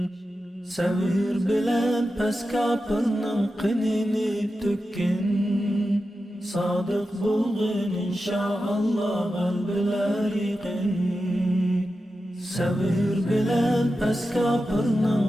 Sabır bilen pes kapının qinini tökkin, sadık bulgin inşallah qalbiler yiqin. Sabır bilen pes kapının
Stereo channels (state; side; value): normal; both; correlation 0.91